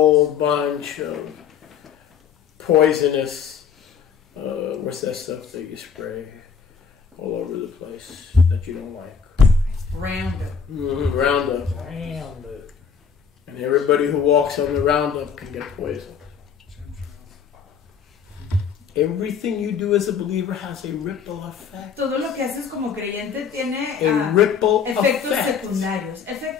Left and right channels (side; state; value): right; quieter; 6.8 dB